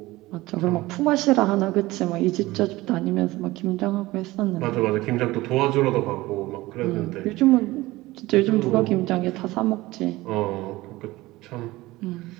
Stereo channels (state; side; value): quieter; left; 19.1 dB